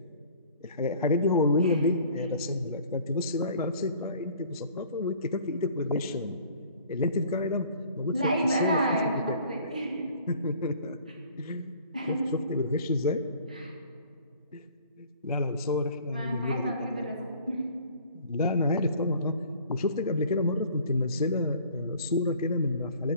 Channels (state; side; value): inverted; both; correlation -0.52